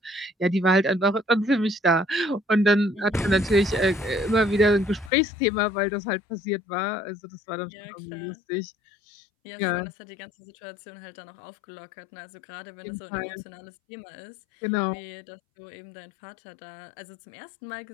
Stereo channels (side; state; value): right; drops out; at 5.1 s